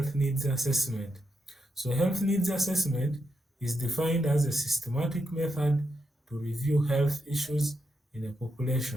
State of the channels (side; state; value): both; normal; correlation 0.83